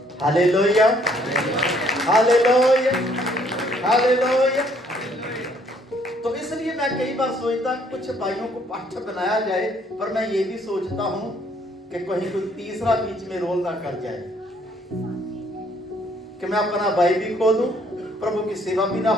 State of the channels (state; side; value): normal; both; correlation 0.65